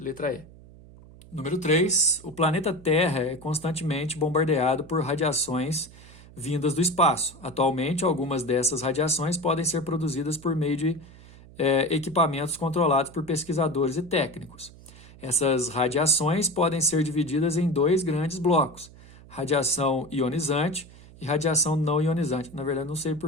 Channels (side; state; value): right; noise; hum, 21 dB below the sound